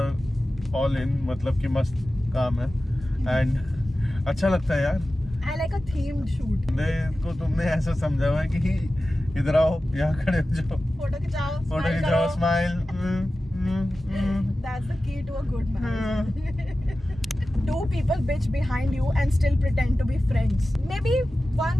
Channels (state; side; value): normal; both; correlation 0.95